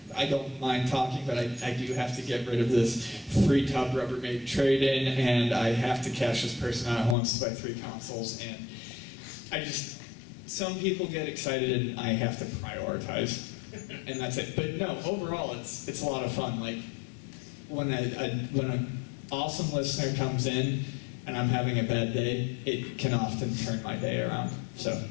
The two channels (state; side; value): drops out; right; at 7.2 s